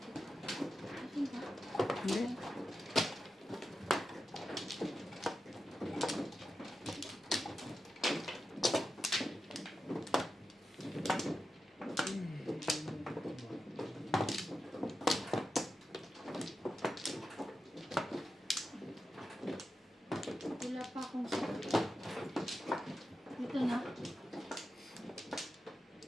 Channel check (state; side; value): normal; both; correlation 0.90